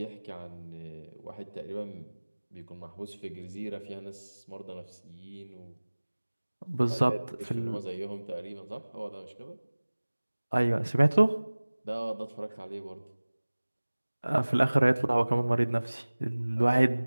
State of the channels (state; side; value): inverted; both; correlation -1.00